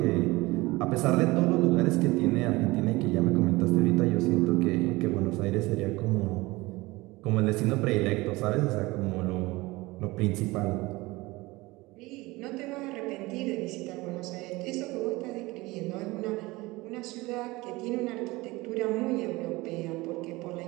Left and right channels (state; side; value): quieter; left; 21.4 dB